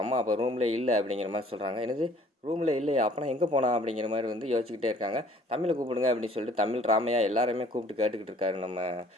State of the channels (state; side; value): normal; both; correlation 0.55